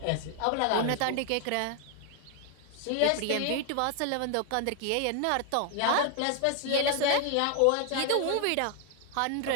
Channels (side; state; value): both; different; correlation 0.00